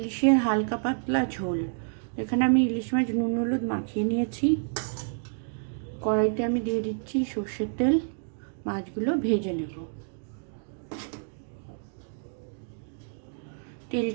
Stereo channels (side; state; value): left; silent; digital silence